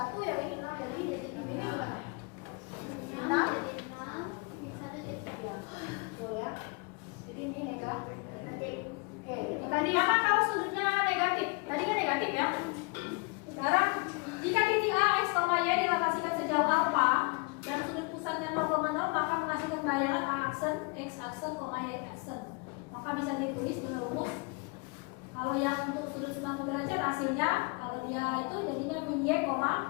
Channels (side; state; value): right; quieter; 30.2 dB